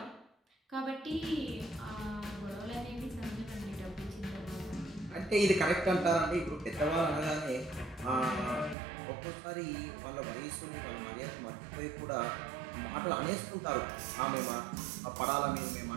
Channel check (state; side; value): drops out; left; at 8.8 s